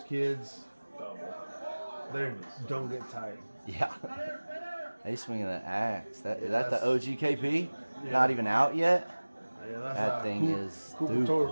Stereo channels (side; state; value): both; inverted; correlation -1.00